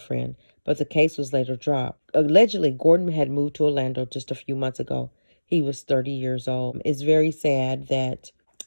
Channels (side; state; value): both; inverted; correlation -1.00